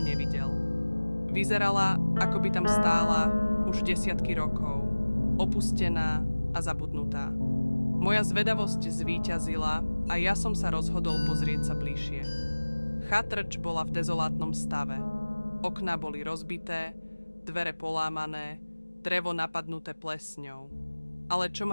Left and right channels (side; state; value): both; inverted; correlation -1.00